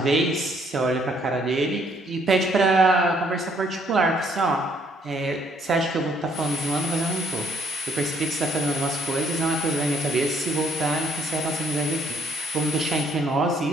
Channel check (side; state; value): both; normal; correlation 0.67